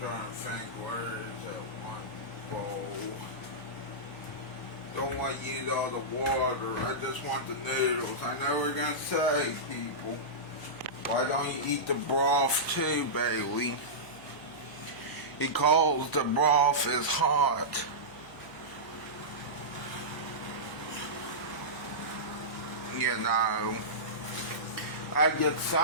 think, where is that one bowl? Don't want to use all the water. I just want the noodles. I know we're going to say, people, why don't you eat the broth too, Bailey? Because the broth is hot. You know, I get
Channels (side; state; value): right; noise; hum, 26 dB below the sound